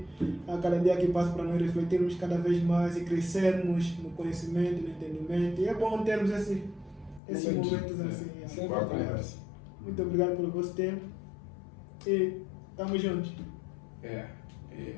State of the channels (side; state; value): right; drops out; at 7.2 s